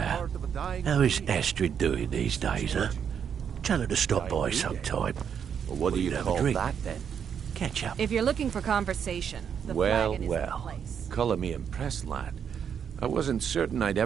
how is Astrid doing these days, huh? Tell her to stop by sometime. Well, what do you have a call drink. that, then? Catch up. If you're looking for conversation, the flagon is the place. Colour me impressed, lad. I wasn't certain I'd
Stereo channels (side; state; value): left; quieter; 7.8 dB